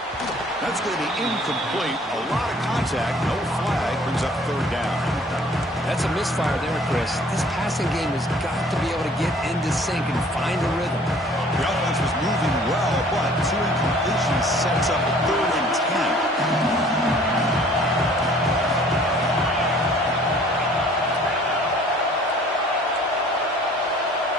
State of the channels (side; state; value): both; normal; correlation 0.54